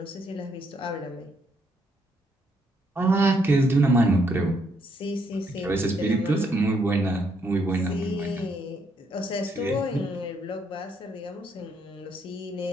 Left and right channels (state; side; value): normal; both; correlation 0.73